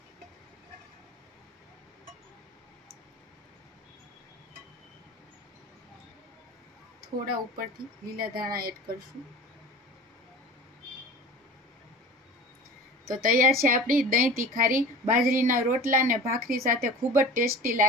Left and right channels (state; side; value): normal; both; correlation 0.38